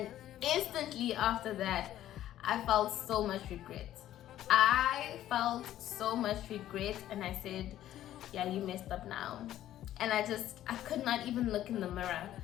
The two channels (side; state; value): right; quieter; 12.7 dB